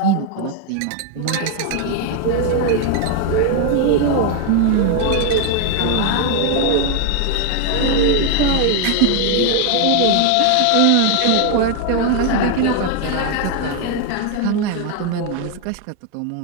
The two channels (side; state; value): both; different; correlation 0.01